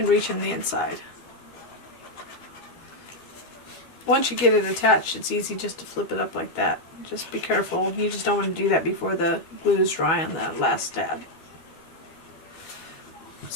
reach in the inside. Once you get it attached, it's easy just to flip it up like that. Just be careful. You just don't want to do that before the glue is dry on the last tab.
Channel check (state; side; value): late; right; 12 ms